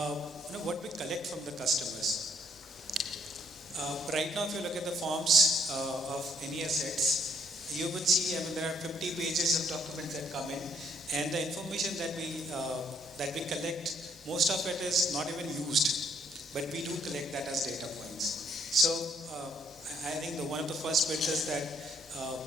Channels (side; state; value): both; normal; correlation 0.67